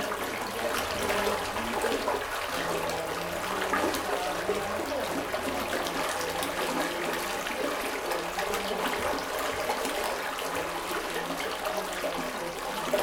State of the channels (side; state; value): both; identical; correlation 1.00